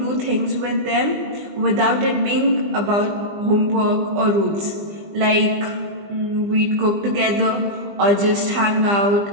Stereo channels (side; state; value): left; late; 20 ms